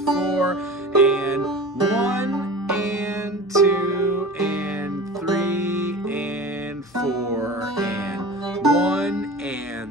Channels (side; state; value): both; normal; correlation 0.35